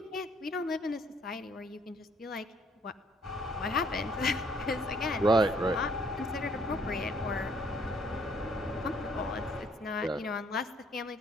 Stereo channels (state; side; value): normal; both; correlation 0.64